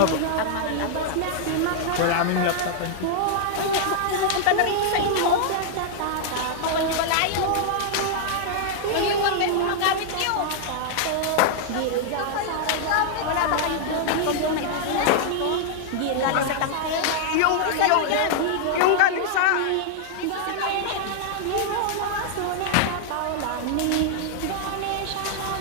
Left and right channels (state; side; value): different; both; correlation -0.01